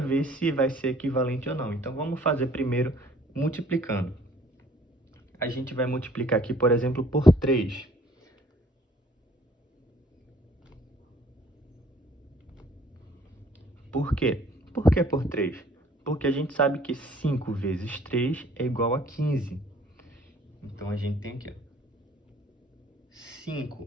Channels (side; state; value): both; normal; correlation 0.57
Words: se vai ser equivalente ou não. Então, vamos fazer primeiro multiplicando. A gente vai multiplicar aqui, por exemplo, por 3. Por quê? Por que por 3? Porque a gente sabe que 5 vezes 3 é igual a 15. Então, a gente tem aqui, ó,